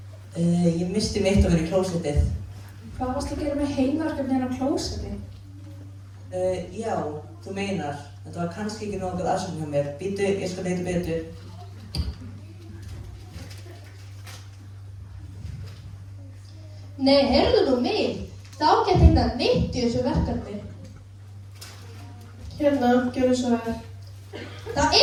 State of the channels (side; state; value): both; identical; correlation 1.00